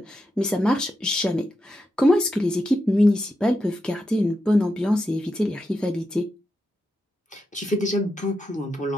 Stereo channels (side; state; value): both; normal; correlation 0.87